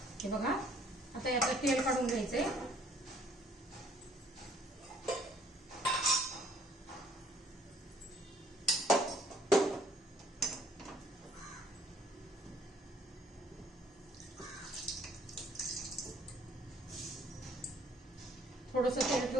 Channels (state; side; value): normal; both; correlation 0.62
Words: हे बघा. आता याचं तेल काढून घ्यायचंय. थोडंसं तेल